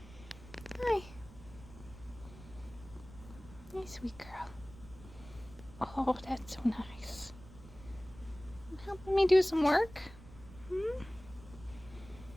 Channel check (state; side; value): noise; right; rumble, 18 dB below the sound